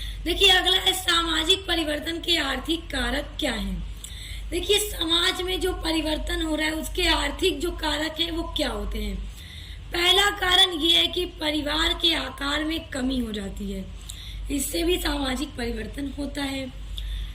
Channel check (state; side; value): identical; both; correlation 1.00